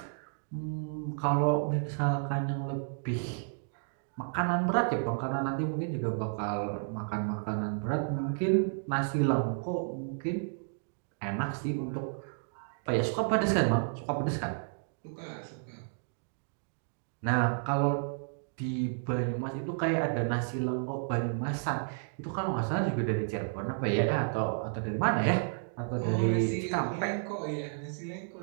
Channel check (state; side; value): silent; left; digital silence